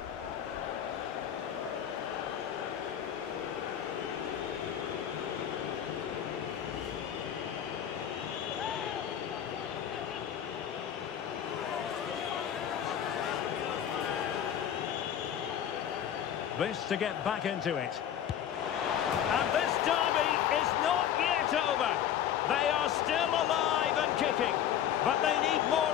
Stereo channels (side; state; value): right; quieter; 9.9 dB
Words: This to get back into it. And this derby is not yet over. They are still alive and kicking, but they need